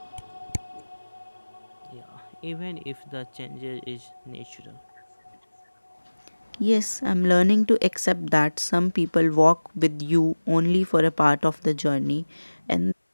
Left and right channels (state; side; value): inverted; both; correlation -1.00